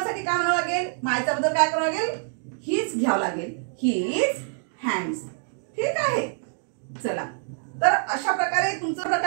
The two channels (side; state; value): left; silent; 61 dB below the other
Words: काय म्हणावं लागेल? मायचा बदल काय करावं लागेल? हीच घ्यावं लागेल, हीज हँड्स. ठीक आहे. चला, तर अशा प्रकारे